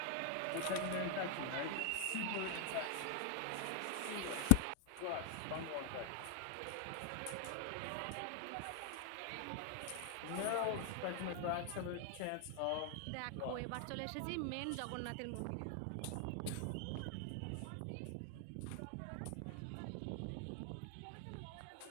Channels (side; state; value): both; different; correlation 0.00